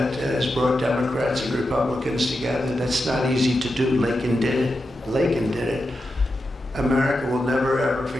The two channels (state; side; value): normal; both; correlation 0.89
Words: has brought Democrats and Republicans together. That's not easy to do. Laken did it. Laken did it. America will never ever